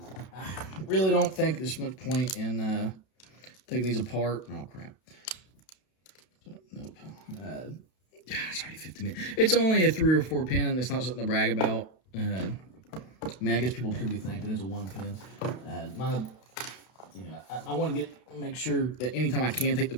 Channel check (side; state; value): right; late; 32 ms